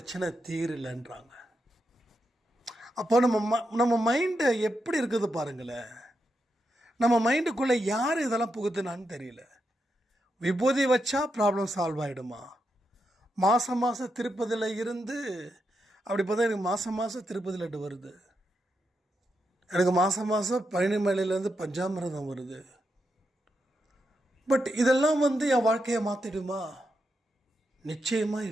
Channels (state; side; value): normal; both; correlation 0.84